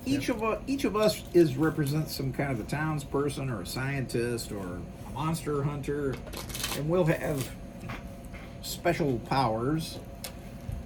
Each of us represents some kind of a townsperson or a scientist or a monster hunter, and we'll have special powers.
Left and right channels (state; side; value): identical; both; correlation 1.00